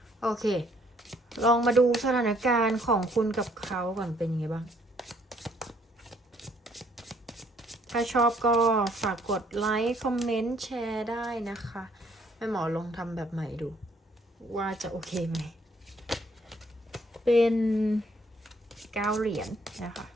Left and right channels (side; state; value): both; normal; correlation 0.65